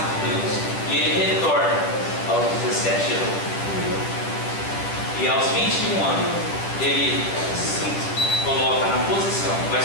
Deus, e ele retorna aos 17 anos. E aos 21 anos, ele se coloca na posição, vai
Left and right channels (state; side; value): late; right; 10 ms